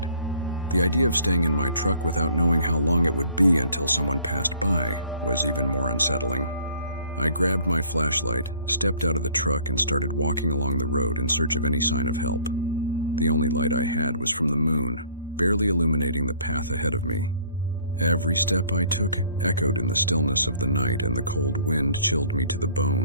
the idea of staying in my truck without knowing how long it would be until someone passed by was even more unsettling. I grabbed my flashlight, stepped out of the truck, and started walking along the road in search of any sign of help. The only light I had was from the moon, barely illuminating the path ahead of me. Every step I took echoed in the stillness of the night, and the cold wind chilled me to the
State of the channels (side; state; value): both; inverted; correlation -0.56